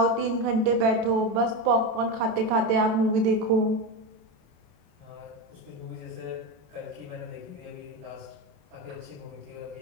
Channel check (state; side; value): late; left; 27 ms